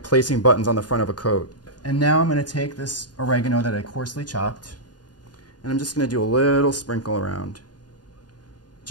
placing buttons on the front of a coat. And now I'm going to take this oregano that I coarsely chopped, and I'm just going to do a little sprinkle around.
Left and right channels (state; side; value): late; right; 0.69 ms